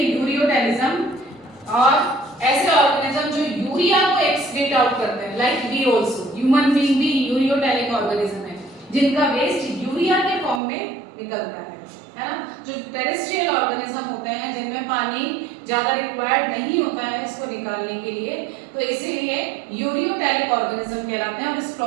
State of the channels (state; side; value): drops out; left; at 10.6 s